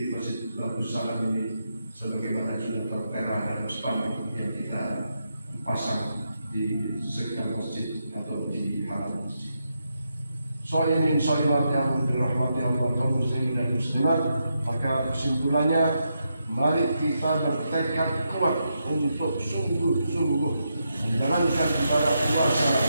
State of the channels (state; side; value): inverted; both; correlation -0.83